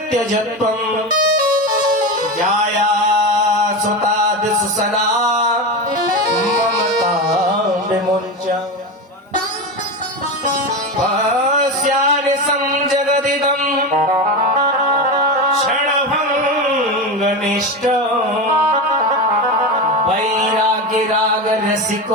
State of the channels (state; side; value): normal; both; correlation 0.20